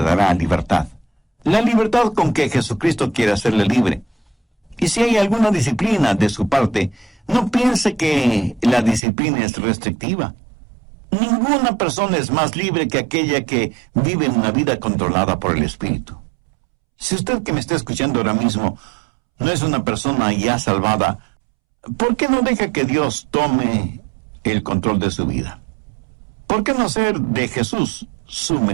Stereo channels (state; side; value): drops out; left; at 9.1 s